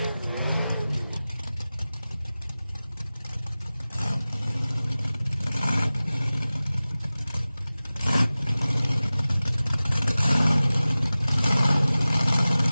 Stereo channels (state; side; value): inverted; both; correlation -0.97